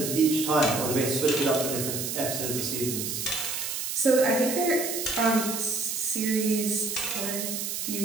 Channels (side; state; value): right; noise; hiss, 3 dB below the sound